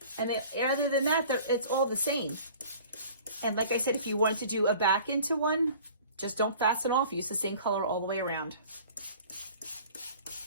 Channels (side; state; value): both; inverted; correlation -0.47